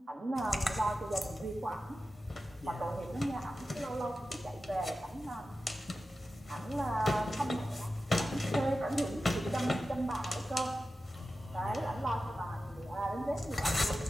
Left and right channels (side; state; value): both; normal; correlation 0.93